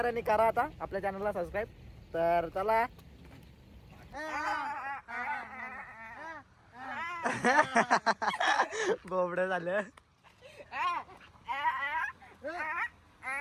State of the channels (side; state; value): both; identical; correlation 1.00